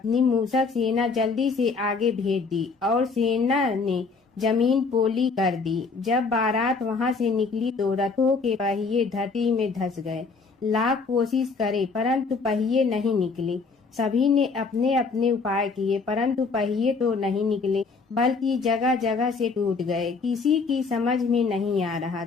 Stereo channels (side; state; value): right; quieter; 4.5 dB